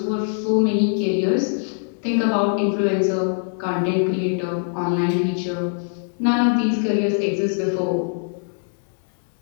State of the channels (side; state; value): right; silent; digital silence